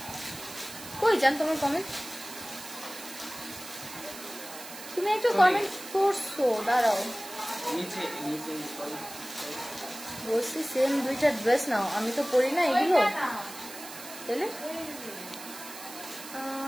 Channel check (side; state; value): right; noise; hiss, 13 dB below the sound